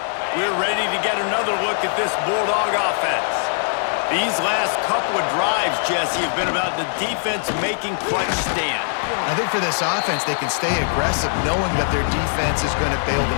We're ready to get another look at this Bulldog offense. These last couple of drives, Jesse, have been about the defense making clutch stand. I think for this offense, they can stay aggressive knowing that their defense is going to bail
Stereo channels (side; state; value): right; silent; digital silence